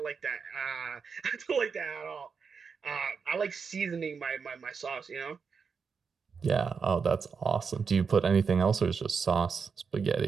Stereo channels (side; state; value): left; quieter; 5.7 dB